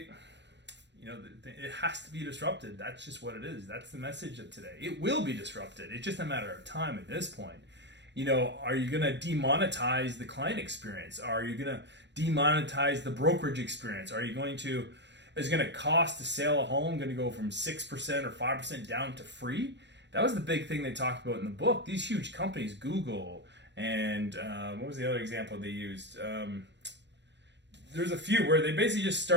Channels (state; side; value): late; left; 0.51 ms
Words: it has to be disrupted. That's just what it is. That's the message of today. It will be disrupted. It's just a matter of time at this point. Are you going to demonetize the client experience? Are you going to demonetize the brokerage experience? Is it going to cost to sell a home going to go from 6% or 5% down to free? That was the big thing they talked about in the book. These huge companies, Google, and what was the other example they used? There's a few where they basically just